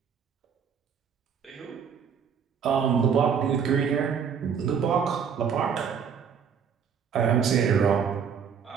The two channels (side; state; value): left; quieter; 7.1 dB